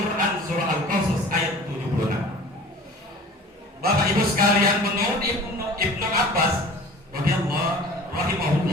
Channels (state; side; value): normal; both; correlation 0.43